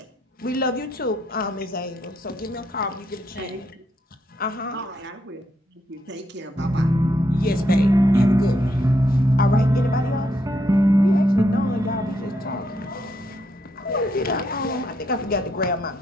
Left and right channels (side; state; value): both; normal; correlation 0.77